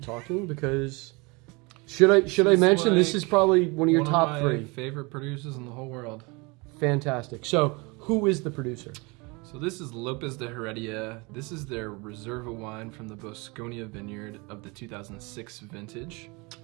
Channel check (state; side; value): quieter; left; 27.5 dB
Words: talking because, should I mention, like this is probably one of your top three. Favorite producers in the whole world. Fantastic. So, who is the producer? So this is Lopez De Heredia. This is their Reserva wine from the Bosconia vineyard of the 2006 vintage.